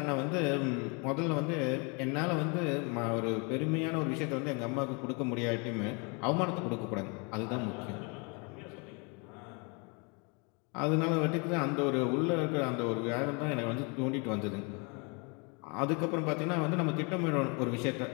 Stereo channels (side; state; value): right; quieter; 32.8 dB